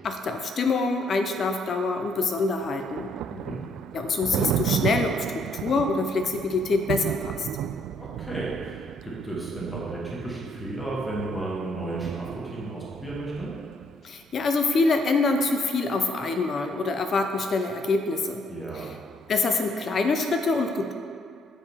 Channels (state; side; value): normal; both; correlation 0.69